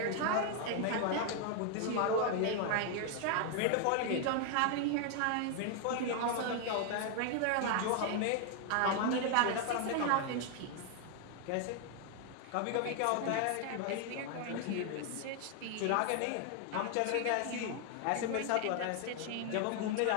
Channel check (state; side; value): different; both; correlation 0.00